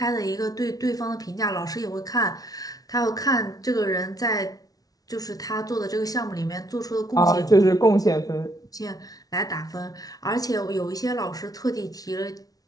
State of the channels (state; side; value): late; right; 0.18 ms